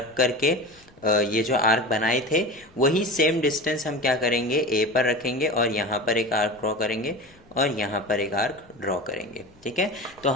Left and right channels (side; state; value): left; noise; rumble, 28 dB below the sound